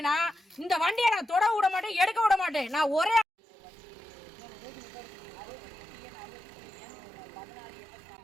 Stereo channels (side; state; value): left; drops out; at 3.2 s